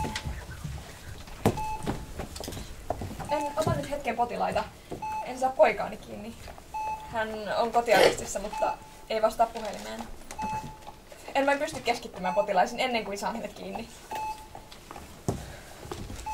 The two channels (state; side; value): identical; both; correlation 1.00